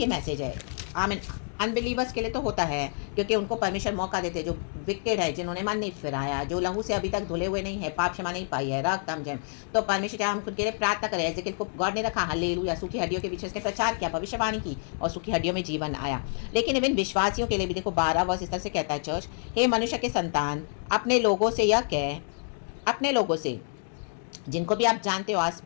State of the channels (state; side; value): silent; right; 59 dB below the other